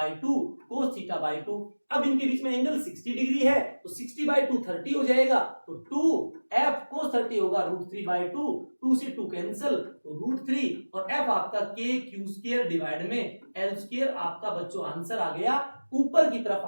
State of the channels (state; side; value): inverted; both; correlation -1.00